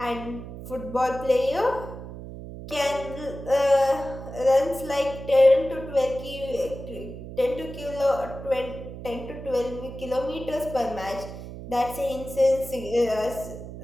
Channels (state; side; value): noise; right; hum, 11 dB below the sound